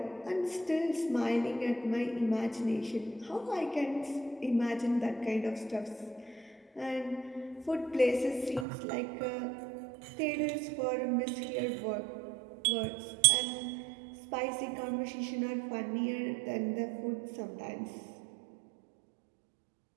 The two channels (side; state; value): left; drops out; at 8.7 s